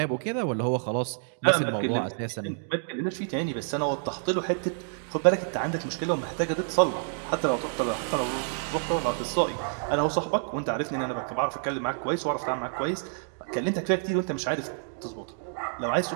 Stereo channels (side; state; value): left; silent; digital silence